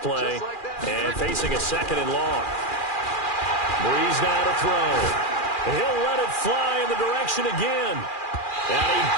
and facing a 2nd and long. Breeze now to throw. He'll let it fly in the direction again. And he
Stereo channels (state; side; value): late; right; 2.4 ms